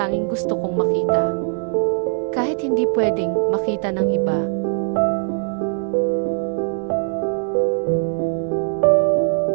gusto kong makita. Kahit hindi pwedeng makita ng iba,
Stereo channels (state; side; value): silent; left; 65 dB below the other